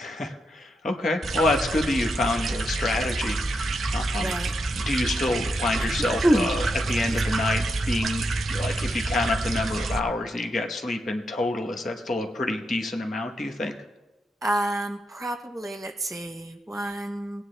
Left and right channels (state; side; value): normal; both; correlation 0.83